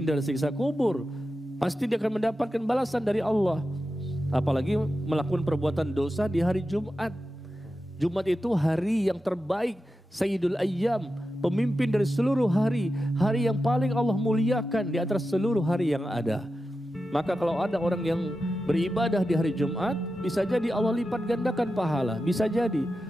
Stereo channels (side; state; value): both; normal; correlation 0.91